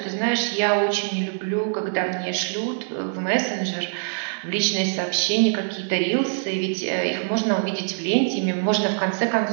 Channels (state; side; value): silent; left; digital silence